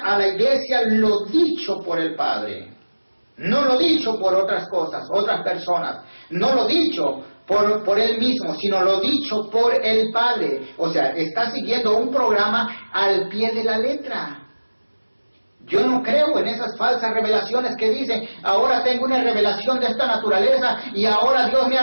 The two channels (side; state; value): both; inverted; correlation -1.00